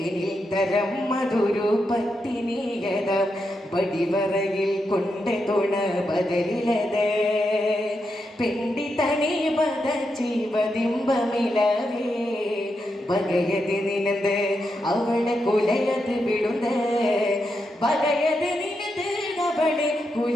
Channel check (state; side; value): normal; both; correlation 0.84